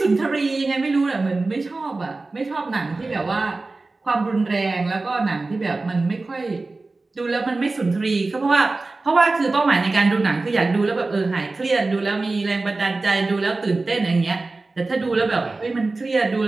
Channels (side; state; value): left; quieter; 3.4 dB